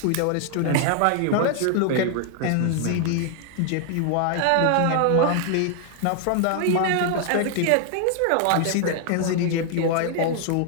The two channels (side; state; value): both; different; correlation 0.00